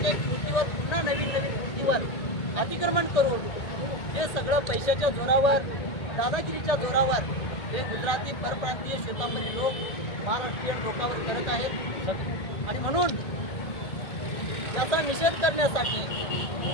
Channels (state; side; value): late; right; 1.8 ms